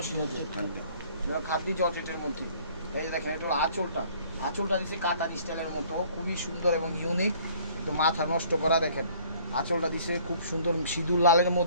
জর্জেট, খাদ্য জর্জেটের মধ্যে। এই যে দেখেন এটা হলো আঁচলটা দিচ্ছে কাতান স্টাইলের মতো, খুবই সুন্দর এবং ইউনিক, তো মাথা নষ্ট করা। দেখেন আঁচলটা দিছে খুব সুন্দর সিঁদুর লালের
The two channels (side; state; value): both; inverted; correlation -0.56